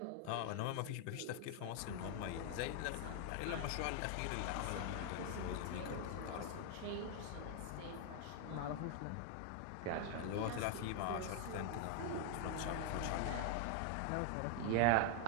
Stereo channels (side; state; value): both; different; correlation 0.00